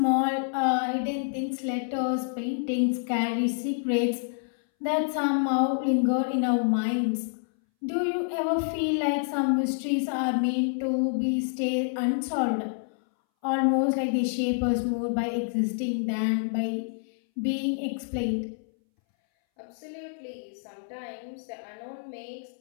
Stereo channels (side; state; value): right; silent; 60 dB below the other